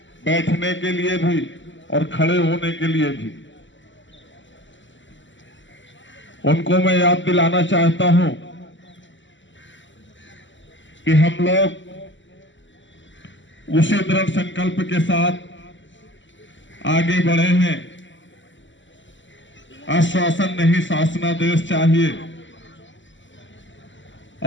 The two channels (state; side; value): late; right; 0.54 ms